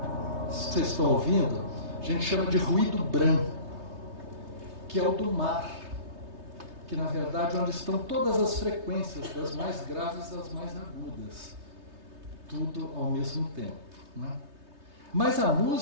Vocês estão ouvindo? A gente chama de ruído branco, que é o do mar, que na verdade é onde estão todas as frequências, das mais graves às mais agudas, tudo ao mesmo tempo, né? Mas a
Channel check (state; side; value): late; left; 3.3 ms